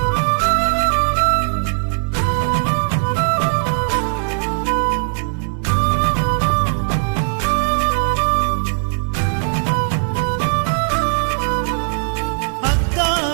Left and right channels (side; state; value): left; silent; digital silence